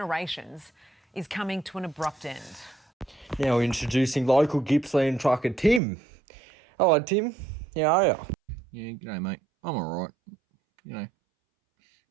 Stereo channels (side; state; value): left; drops out; at 5.8 s